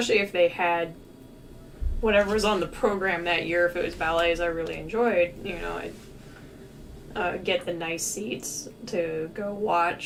if they had whatever was on the program that year. If it was ballets I really enjoyed, I'd get the nice seats to go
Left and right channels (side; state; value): both; identical; correlation 1.00